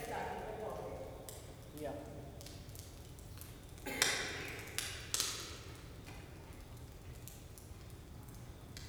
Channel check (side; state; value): both; identical; correlation 1.00